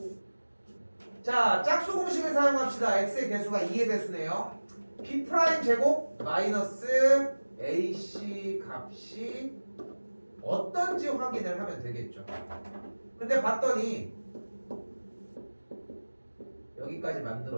자, 짝수 공식을 사용합시다. x의 개수가 2의 배수네요. B' 제곱 마이너스 AC 값이 어떤지 확인을 하면 되겠죠. 근데 봤더니 여기까지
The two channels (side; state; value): both; inverted; correlation -1.00